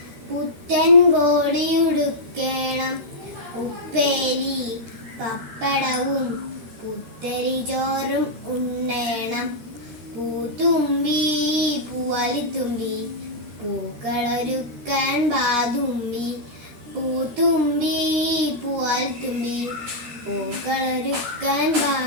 പുത്തൻ കോടിയുടുക്കേണം, ഉപ്പേരി പപ്പടവും പുത്തരി ചോറും ഉണ്ണേണം. പൂത്തുമ്പി പൂവാലിത്തുമ്പി പൂക്കളൊരുക്കാൻ ബാതുമ്പി. പൂത്തുമ്പി പൂവാലിത്തുമ്പി പൂക്കളൊരുക്കാൻ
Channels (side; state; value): left; late; 13 ms